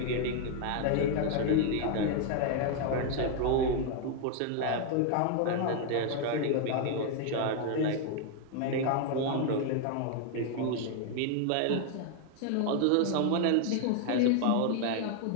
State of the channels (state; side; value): different; both; correlation 0.00